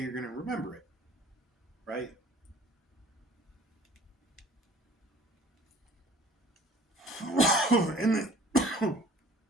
you're going to remember it, right? and, the,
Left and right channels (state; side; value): normal; both; correlation 0.50